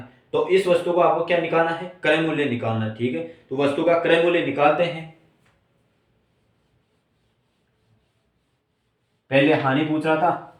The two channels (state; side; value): identical; both; correlation 1.00